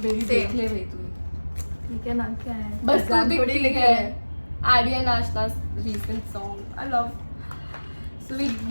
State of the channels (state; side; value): inverted; both; correlation -1.00